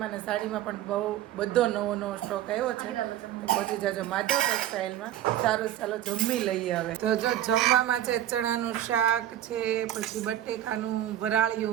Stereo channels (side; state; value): left; quieter; 12.2 dB